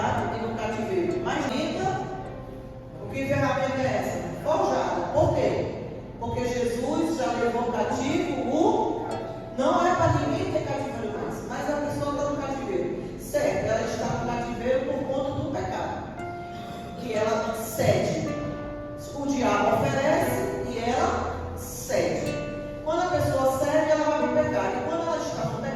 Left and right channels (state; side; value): identical; both; correlation 1.00